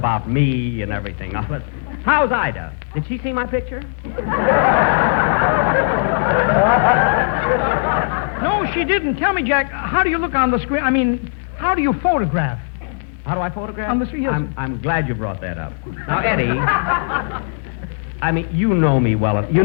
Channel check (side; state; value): right; silent; digital silence